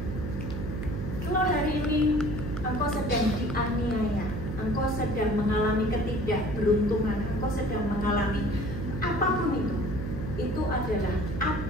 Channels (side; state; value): right; noise; hum, 5 dB below the sound